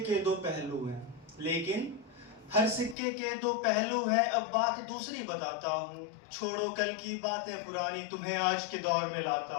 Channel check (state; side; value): drops out; right; at 3.0 s